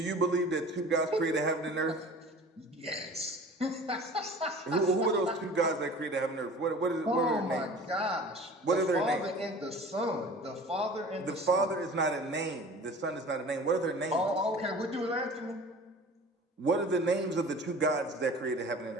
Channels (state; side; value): normal; both; correlation 0.43